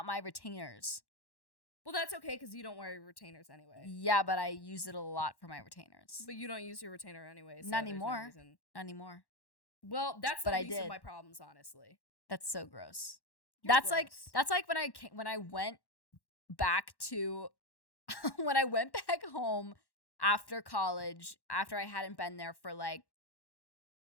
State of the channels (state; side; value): late; right; 1.1 ms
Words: my retainers. Well, that's okay because you don't wear your retainers anyway. Yeah, but I use it a lot for my retainers. But you don't use your retainer anyway. So Not there's no anymore. reason. Not anymore. Well, that's the But I least of did. my problems, honestly. That's so gross. You're That's gross. like when I went back to when I went back home after college, after I hadn't been there for like